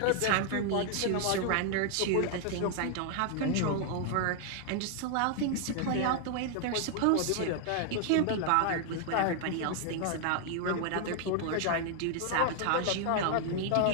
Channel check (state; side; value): different; both; correlation 0.00